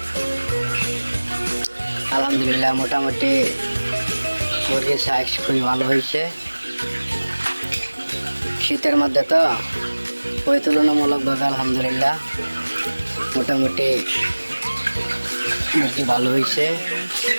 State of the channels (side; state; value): both; inverted; correlation -1.00